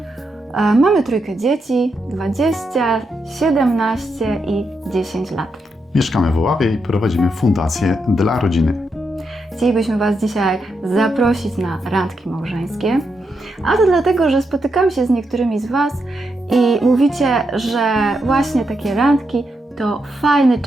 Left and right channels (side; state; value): both; normal; correlation 0.83